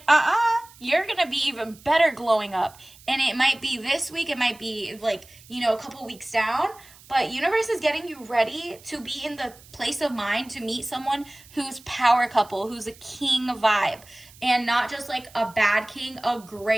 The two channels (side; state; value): right; noise; hiss, 23 dB below the sound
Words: you're going to be even better glowing up. And it might be this week. It might be like, you know, a couple weeks down. But universe is getting you ready to be in the place of mind to meet someone who's power couple, who's a king vibe, and not just like a bad king, a